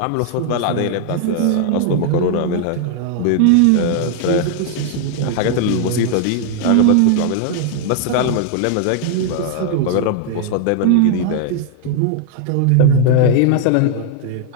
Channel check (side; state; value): both; different; correlation 0.00